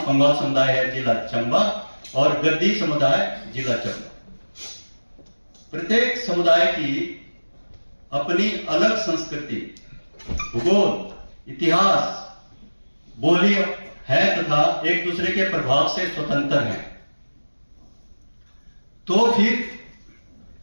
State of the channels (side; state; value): both; inverted; correlation -1.00